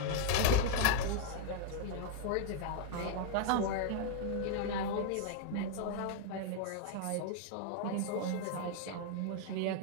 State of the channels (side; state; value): both; different; correlation 0.00